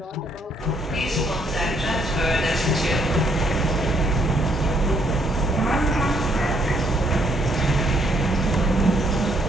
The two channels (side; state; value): both; normal; correlation 0.71